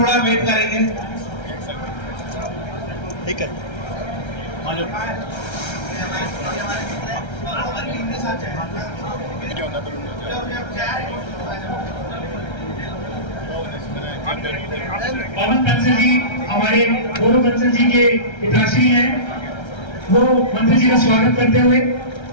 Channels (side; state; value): right; late; 1.3 ms